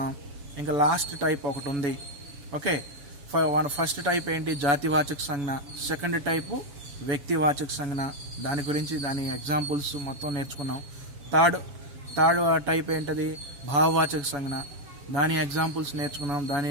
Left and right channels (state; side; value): late; left; 7.0 ms